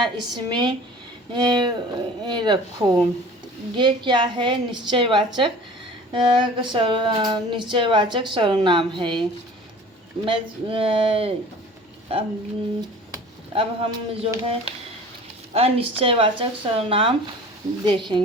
इसमें रखो। ये क्या है? निश्चयवाचक सर्वनाम है। अब हम जो है अनिश्चयवाचक सर्वनाम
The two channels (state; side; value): normal; both; correlation 0.44